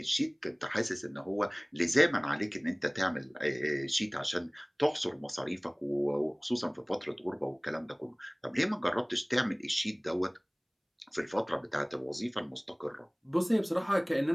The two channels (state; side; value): identical; both; correlation 1.00